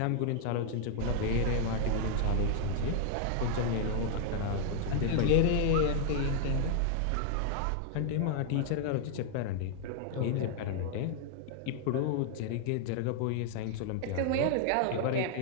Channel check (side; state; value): both; different; correlation 0.00